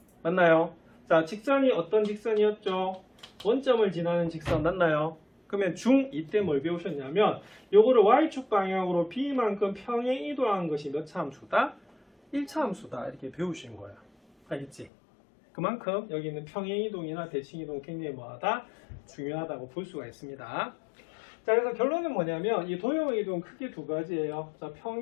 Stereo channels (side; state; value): right; drops out; at 14.9 s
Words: 맞나요? 자, 직선이 어떤 직선이었죠? 원점을 지나는 직선 맞나요? 그러면 중2 때 뭘 배우셨냐면 요거를 y축 방향으로 b만큼 평행 이동한 것이 몇 차 함수다? 1차 함수다. 이렇게 배우신 거예요. 알겠지? 그만큼 여기 있는 평행 이동이나 대칭 이동 굉장히 뭐하다? 중요하다고 볼 수가 있습니다. 자, 그래서 결론은 뭐냐면 이 도형의 이동은 크게 두 가지예요. 자,